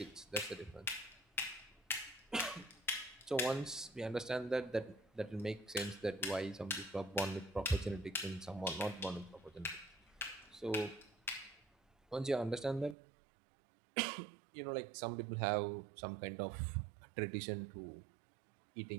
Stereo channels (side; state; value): left; drops out; at 13.0 s